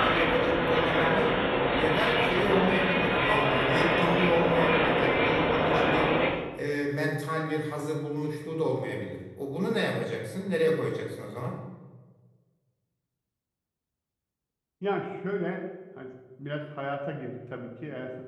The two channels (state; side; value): identical; both; correlation 1.00